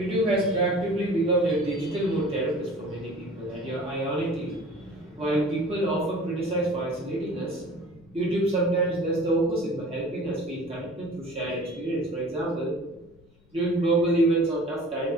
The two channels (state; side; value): noise; left; rumble, 29 dB below the sound